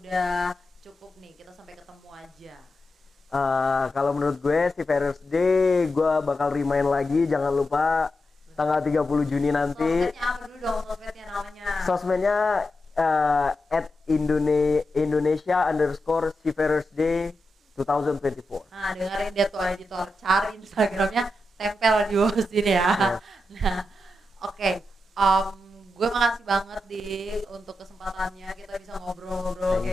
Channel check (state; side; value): normal; both; correlation 0.89